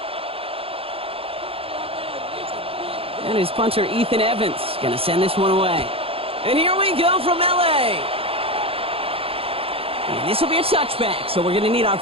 And his punter, Ethan Evans, going to send this one away. And here we go from L.A. And this will be a touchback, so we're going to need our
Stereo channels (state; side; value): late; left; 0.27 ms